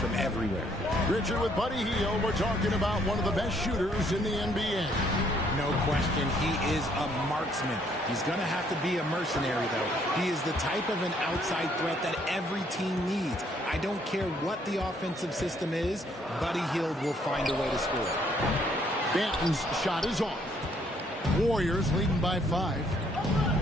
everywhere. Richard, with Buddy Hield, we're talking about one of the best shooters in the NBA. No question, he is a marksman. He's going to have to be a mercenary, though. He is the type of an outside threat that every team needs. I don't care what the offensive system is, Buddy Hield will find a way to score. Banton's shot is off. Warriors leading by 5.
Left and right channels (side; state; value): both; normal; correlation 0.67